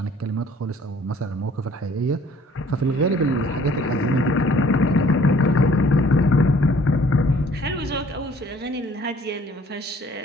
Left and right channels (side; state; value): both; normal; correlation 0.57